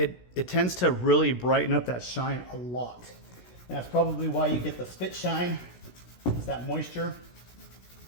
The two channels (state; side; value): late; right; 16 ms